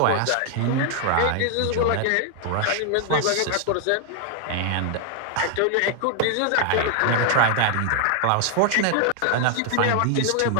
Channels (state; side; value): different; both; correlation 0.00